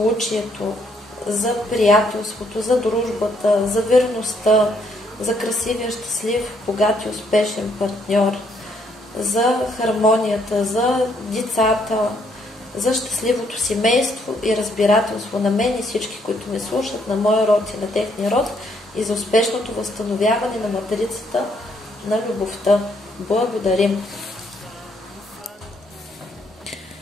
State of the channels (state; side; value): normal; both; correlation 0.70